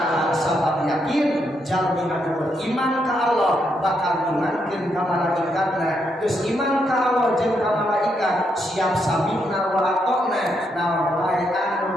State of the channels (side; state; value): both; normal; correlation 0.78